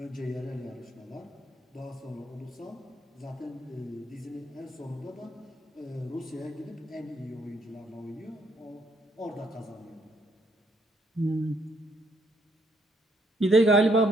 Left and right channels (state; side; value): normal; both; correlation 0.71